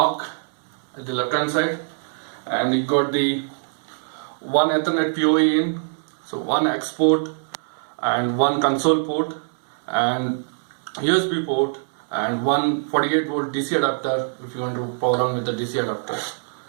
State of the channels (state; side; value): silent; left; 63 dB below the other